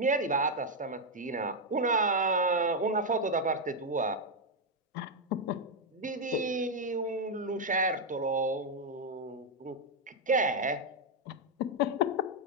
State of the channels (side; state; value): both; normal; correlation 0.02